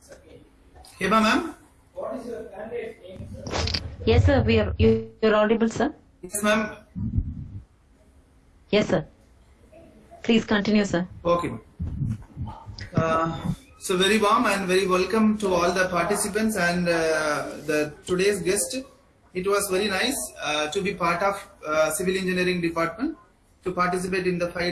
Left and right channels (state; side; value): identical; both; correlation 1.00